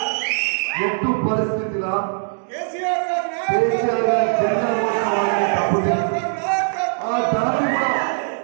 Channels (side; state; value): left; silent; digital silence